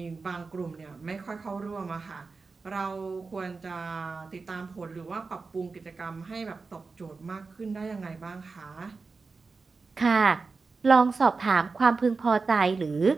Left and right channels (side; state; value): left; quieter; 4.3 dB